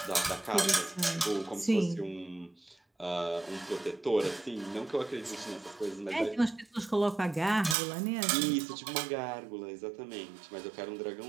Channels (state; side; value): drops out; left; at 7.8 s